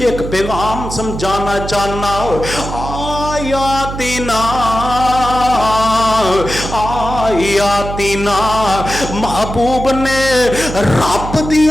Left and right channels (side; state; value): right; noise; hum, 7 dB below the sound